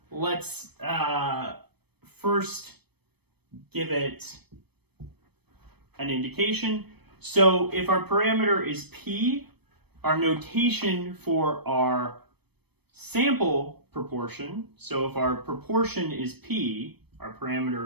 Let's first give it an indication. So if our parameter is P, our notation for our sample proportion, so if our proportion is P, our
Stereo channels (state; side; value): late; left; 0.97 ms